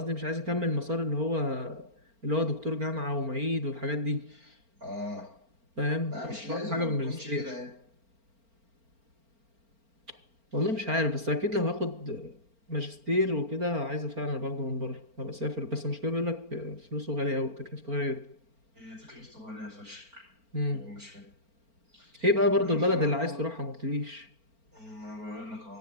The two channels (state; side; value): late; left; 4.4 ms